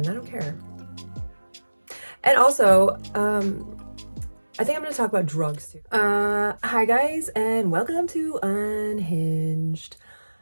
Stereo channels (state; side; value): inverted; both; correlation -1.00